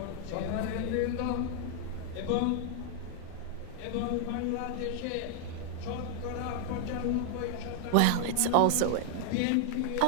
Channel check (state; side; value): different; both; correlation 0.00